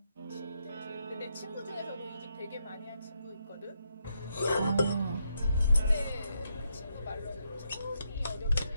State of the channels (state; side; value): inverted; both; correlation -0.80